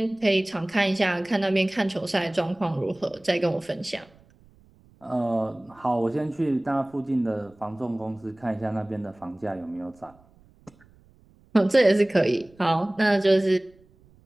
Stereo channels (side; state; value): right; noise; rumble, 29 dB below the sound